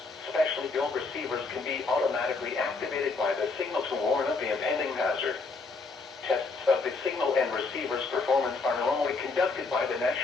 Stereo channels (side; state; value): right; quieter; 4.0 dB